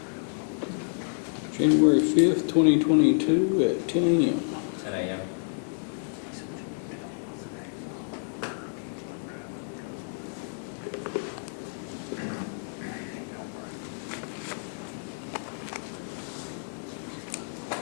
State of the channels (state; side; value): silent; right; digital silence